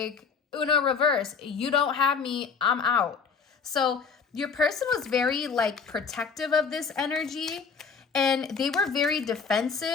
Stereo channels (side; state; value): right; quieter; 5.7 dB